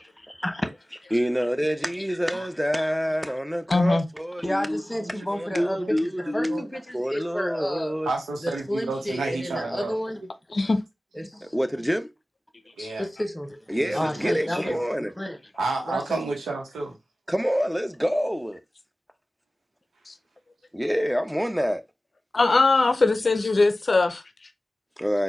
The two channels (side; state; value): both; normal; correlation 0.96